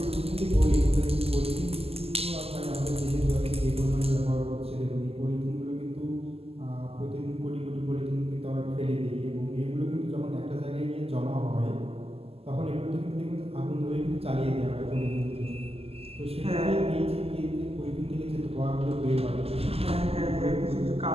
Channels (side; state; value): left; late; 0.29 ms